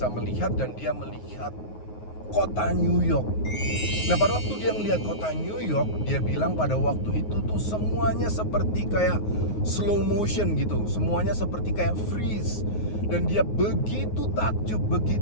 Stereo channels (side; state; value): right; late; 9.5 ms